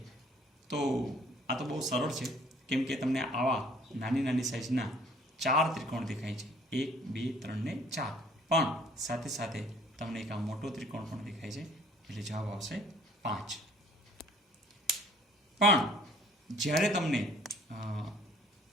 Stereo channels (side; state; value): both; normal; correlation 0.57